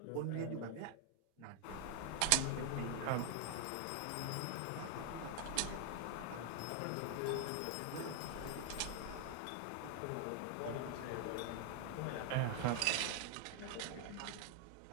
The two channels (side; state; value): both; different; correlation 0.00